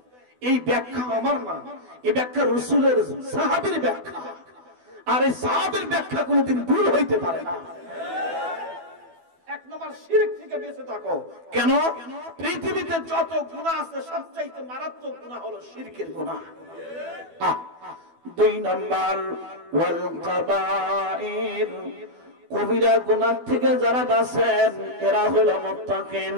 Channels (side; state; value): left; late; 12 ms